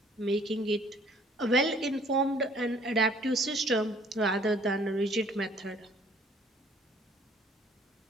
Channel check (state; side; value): normal; both; correlation 0.58